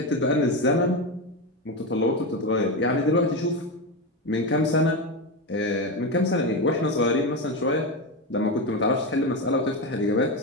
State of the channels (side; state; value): both; normal; correlation 0.14